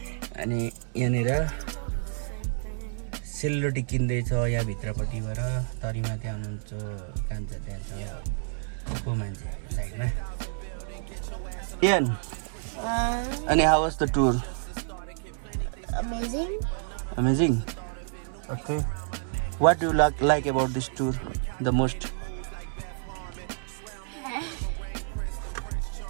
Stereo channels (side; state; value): left; silent; 59 dB below the other